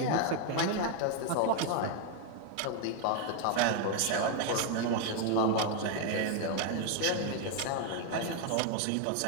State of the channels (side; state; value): both; different; correlation 0.01